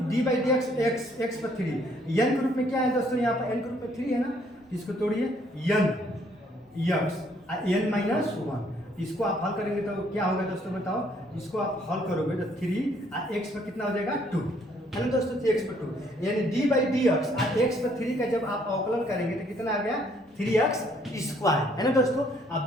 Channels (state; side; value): normal; both; correlation 0.65